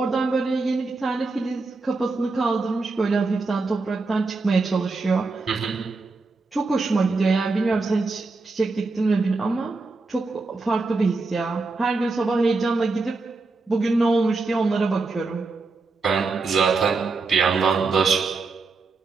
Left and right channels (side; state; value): left; quieter; 3.8 dB